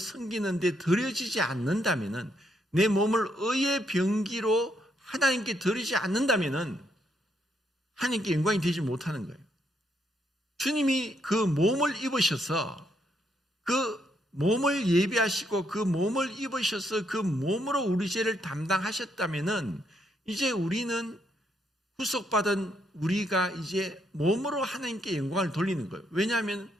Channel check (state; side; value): normal; both; correlation 0.75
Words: 데 드려지지 않는다면은, 내 몸을 의의 병기로 하나님께 드리지 않는다면은 하나님께 영광이 되지 못하는 거예요. 주님이 그 몸을 입으셔서 그 몸을 예비하시고 그 몸을 입으셔서 그 몸으로 우리 죄를 담당하셨다면은 이제 우리는 구속받은 우리가 이제 몸으로 하나님께 영광을 돌리는 거예요. 왜냐하면